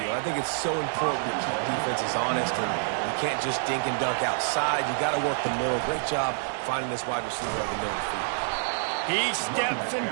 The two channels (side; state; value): left; silent; digital silence